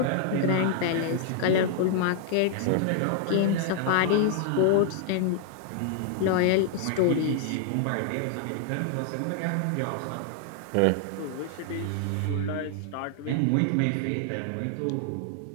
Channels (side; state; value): both; different; correlation -0.01